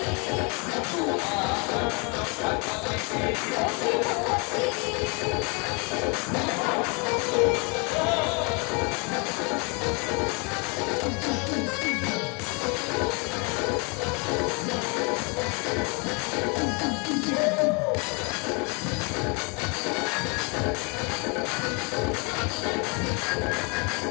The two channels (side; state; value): right; quieter; 33.0 dB